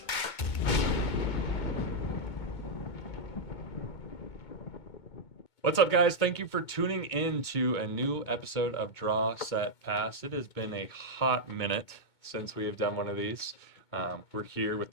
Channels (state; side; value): late; right; 2.2 ms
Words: What's up, guys? Thank you for tuning in to a new episode of Draw, Set, Pass. It has been a hot minute since we have done one of these. We're here